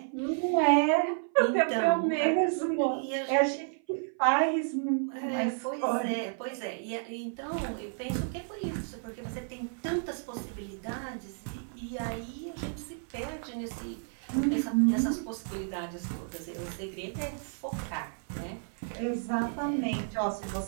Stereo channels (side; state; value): left; silent; 56 dB below the other